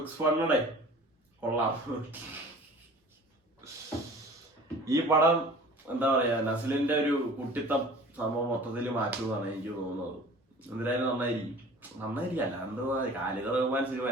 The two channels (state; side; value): normal; both; correlation 0.44